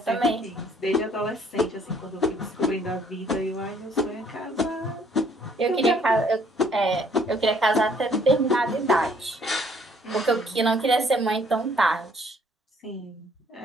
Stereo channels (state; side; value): normal; both; correlation 0.62